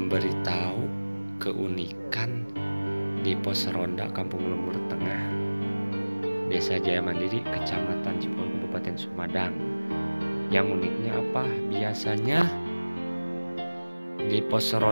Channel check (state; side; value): inverted; both; correlation -1.00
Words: keunikan di pos ronda Kampung Lembur Tengah, Desa Jaya Mandiri, Kecamatan Cipul, Kabupaten Sumedang. Yang uniknya apa? Biasanya di pos